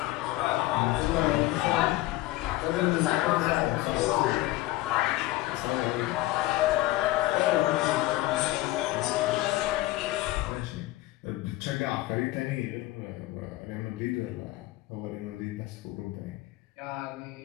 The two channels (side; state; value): right; quieter; 17.6 dB